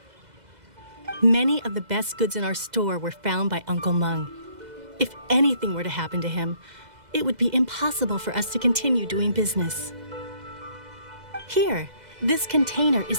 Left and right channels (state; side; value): late; left; 2.0 ms